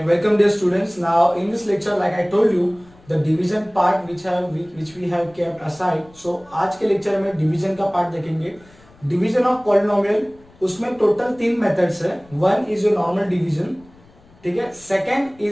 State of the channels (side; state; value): left; noise; rumble, 27 dB below the sound